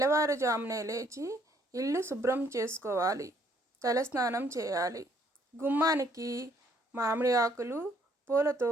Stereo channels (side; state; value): both; normal; correlation 0.66